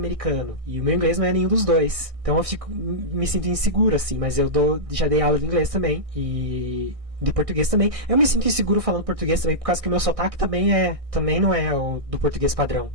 E o meu inglês não é nenhum dos dois. Então eu me sinto inseguro, assim, mas já dei aula de inglês também, e de português também. Eu me sinto inseguro falando português também, por causa que o meu sotaque também não é o do português padrão.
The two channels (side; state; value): left; late; 1.6 ms